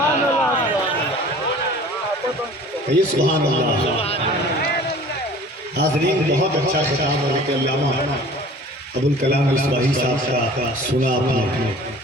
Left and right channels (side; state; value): both; normal; correlation 0.46